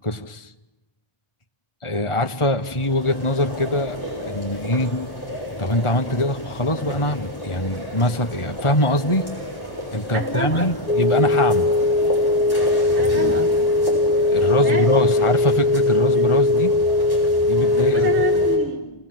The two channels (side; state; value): right; late; 1.4 ms